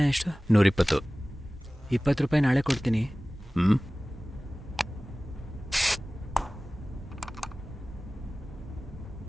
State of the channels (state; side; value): normal; both; correlation 0.98